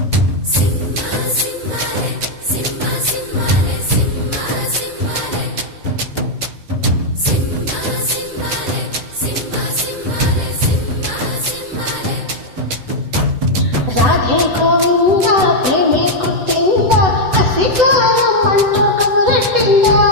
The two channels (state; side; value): late; left; 7.9 ms